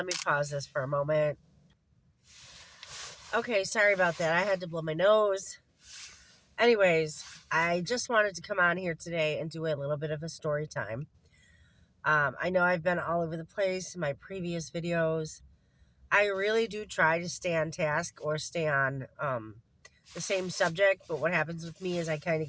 me pause this for a moment. Okay, sorry about that. I had to blow my nose. Anyways, I just wanted to come on here today and do a little bit of a story time. I know I've been all over the place in my previous videos. I really do try to stay on task or stay on the same subject, but what happens with me is I kind of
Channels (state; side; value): identical; both; correlation 1.00